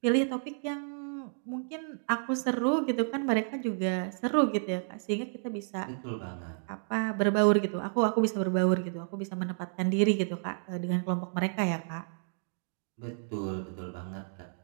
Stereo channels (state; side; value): silent; left; digital silence